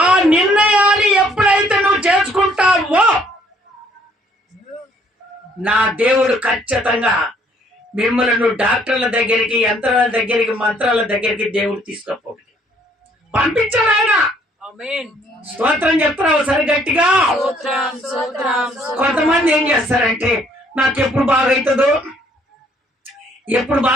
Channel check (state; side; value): normal; both; correlation 0.63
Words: ఆ నిర్ణయాన్ని ఎప్పుడైతే నువ్వు చేసుకుంటావో నా దేవుడు ఖచ్చితంగా మిమ్మల్ని నువ్వు డాక్టర్ల దగ్గరికి, యంత్రాల దగ్గరికి, మంత్రాల దగ్గరికి దేవుడు తీసుకుపోడు, పంపించాడు ఆయన. స్తోత్రం చెప్తారా ఒకసారి గట్టిగా? కొంతమంది ఏం చేస్తారంటే నాకు ఎప్పుడు బాగైతుందో, ఎప్పుడు